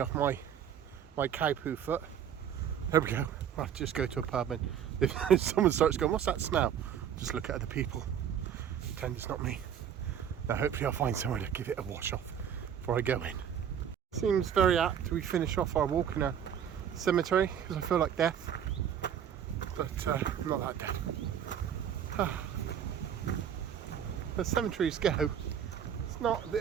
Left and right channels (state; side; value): quieter; left; 8.9 dB